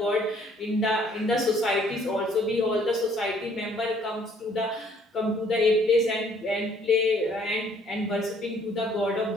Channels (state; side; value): normal; both; correlation 0.61